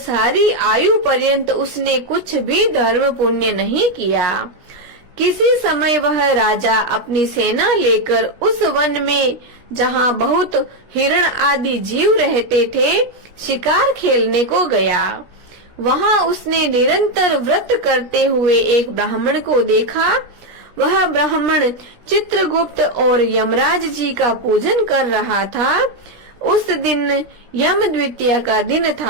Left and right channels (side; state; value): left; late; 17 ms